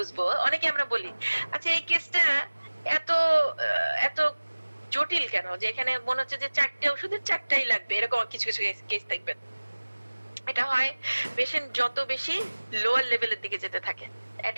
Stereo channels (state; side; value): inverted; both; correlation -1.00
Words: অনেকে আমরা বলি আচ্ছা এই কেসটা এত এত জটিল কেন, যে এখানে মনে হচ্ছে যে 4টে ওষুধের 4টাই লাগবে, এরকম কিছু কিছু কেস দেখবেন। এটা হয় পেশেন্ট যত বেশি লোয়ার লেভেলের দিকে যেতে থাকে, এট